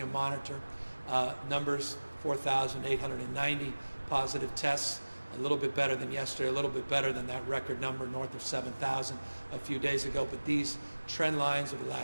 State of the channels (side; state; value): both; inverted; correlation -1.00